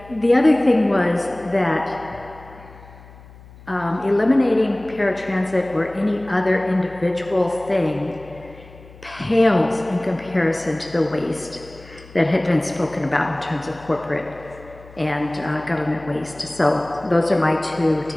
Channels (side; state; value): left; noise; hum, 21 dB below the sound